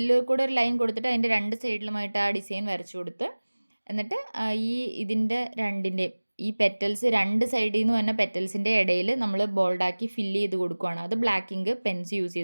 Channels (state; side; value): inverted; both; correlation -1.00